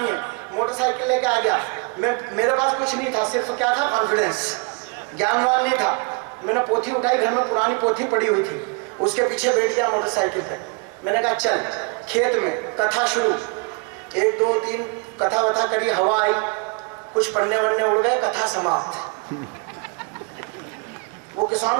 है। मोटरसाइकिल लेके आ गया, मेरे पास कुछ नहीं था, सिर्फ क्या था? कॉन्फिडेंस, ज्ञानवान नहीं था। मैंने पोथी उठाई, घर में पुरानी पोथी पड़ी हुई थी, उसके पीछे बैठ गया मोटरसाइकिल पे। मैंने कहा चल खेत में कथा शुरू, 1 2 3 कथा वथा करी, हवा आई, कुछ पन्ने वन्ने उड़ गए, कथा समाप्त। वो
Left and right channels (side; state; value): left; quieter; 32.4 dB